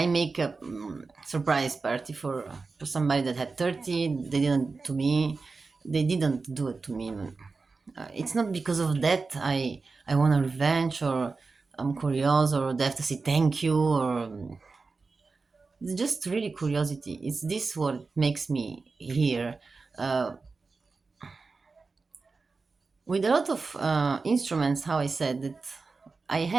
make a surprise party for somebody that had 30. They didn't do it to me. It's not because of that I want a revenge, or I'm curious, or they have to say thank you, or it's just really curiosity. It's this what makes me here. With a lot of instruments, how I said that I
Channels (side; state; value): left; quieter; 4.2 dB